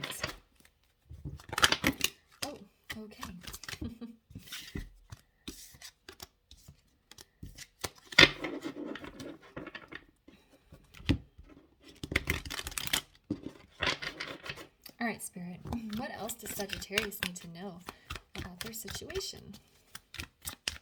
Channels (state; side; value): identical; both; correlation 1.00